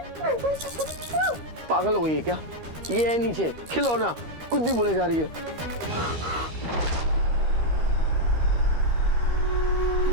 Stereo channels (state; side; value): late; left; 13 ms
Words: पागल हो गई है क्या? ये है नीचे खिलौना, कुछ भी बोले जा रही है।